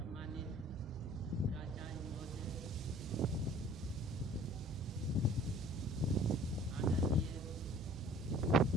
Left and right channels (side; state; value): both; normal; correlation 0.51